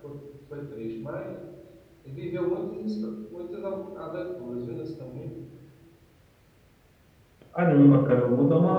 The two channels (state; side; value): identical; both; correlation 1.00